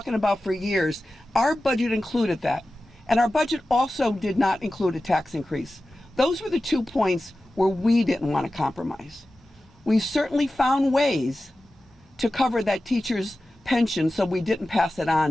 about for years. Our budget included that. And our budget also did not include a tax increase. Those were the 2 points where we didn't want to compromise. We certainly found ways to cover that teacher's pension so we didn't pass it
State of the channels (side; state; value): both; normal; correlation 0.94